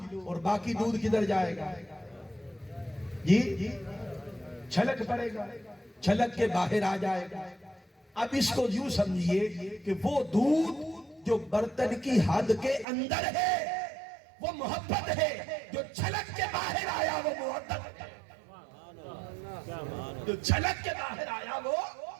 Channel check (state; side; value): drops out; left; at 12.9 s